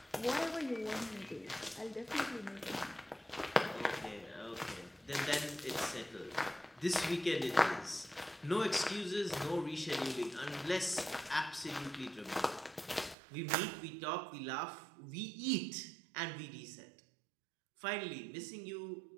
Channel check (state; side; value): drops out; left; at 13.2 s